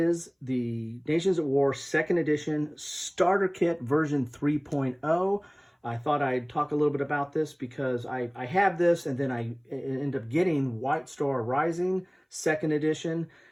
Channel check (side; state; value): both; identical; correlation 1.00